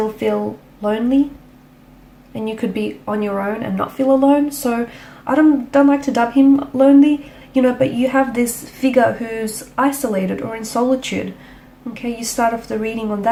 feel lonely. And you could be on your own and not feel alone. So I don't like to dub him lonely, you know, but you have this figure who's isolated or in solitude. Okay, you start off the reading on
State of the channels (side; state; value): both; identical; correlation 1.00